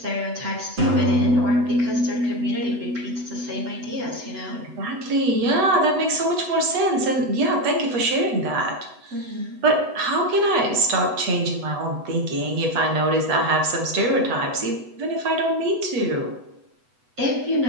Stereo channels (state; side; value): late; left; 8.1 ms